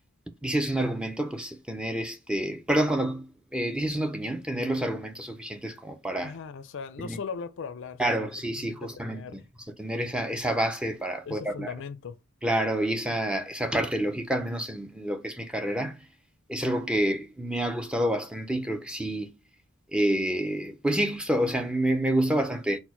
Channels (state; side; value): normal; both; correlation 0.78